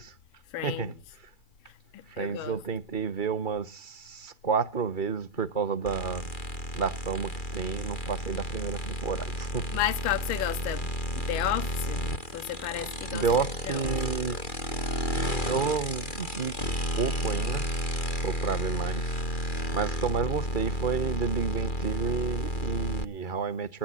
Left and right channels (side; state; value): right; late; 2.4 ms